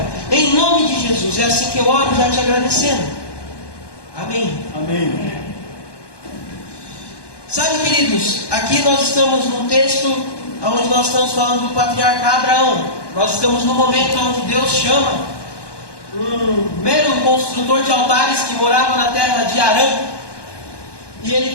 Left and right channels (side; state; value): right; late; 1.2 ms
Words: Em nome de Jesus, é assim que eu oro, já te agradecendo. Amém. Amém. Sabe, queridos, aqui nós estamos num texto onde nós estamos falando do patriarca Abraão. Nós estamos no momento onde Deus chama um mero construtor de altares que morava na terra de Arã. E